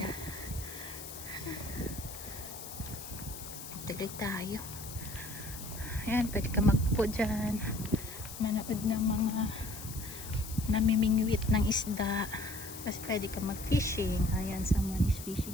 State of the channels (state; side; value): noise; left; hiss, 11 dB below the sound